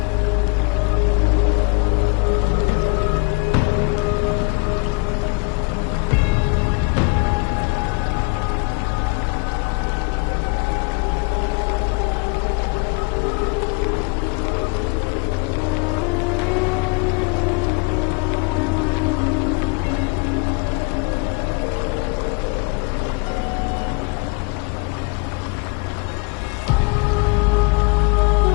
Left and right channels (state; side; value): quieter; right; 31.0 dB